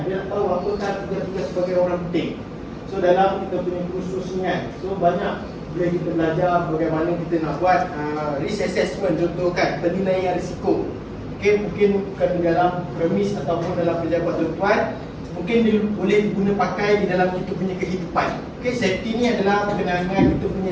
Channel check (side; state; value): both; identical; correlation 1.00